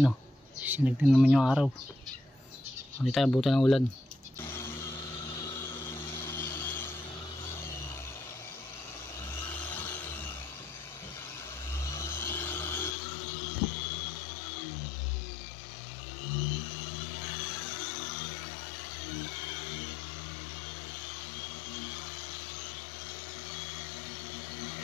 oh. Sinagtin naman yung araw. Hindi tayo abutan ng ulan.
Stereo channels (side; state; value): right; drops out; at 13.0 s